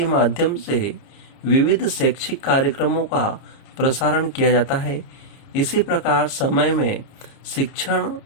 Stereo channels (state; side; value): late; right; 30 ms